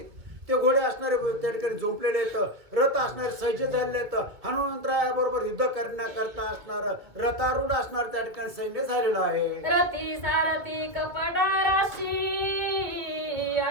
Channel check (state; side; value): late; left; 2.1 ms